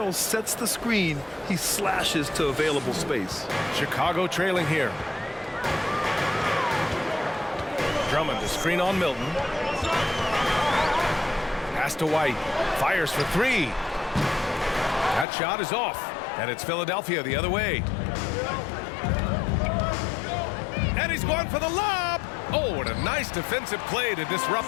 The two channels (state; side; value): drops out; right; at 15.2 s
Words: sets the screen, he slashes to available space. Chicago trailing here. Drummond, a screen on Milton. Pass to White. Fires for 3. That shot is off. And it's Philadelphia the other way. And he's going for the lob. Oh, what a nice defensive play to